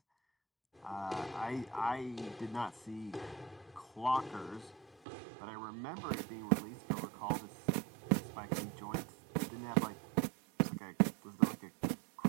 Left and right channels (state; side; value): drops out; left; at 5.0 s